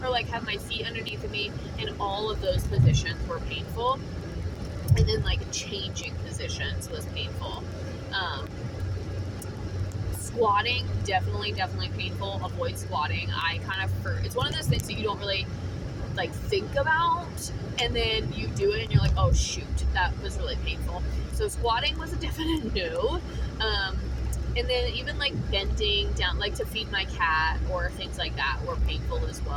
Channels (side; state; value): both; identical; correlation 1.00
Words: or like have my feet underneath of me, and all of those positions were painful. And then like changing positions was painful. Squatting, definitely painful. Avoid squatting. It's one of those things that you don't really like think about, and then you do it and you're like, oh shoot, that was really painful. So squatting was a definite no. And then even like bending down, like to feed my cat or things like that, were painful as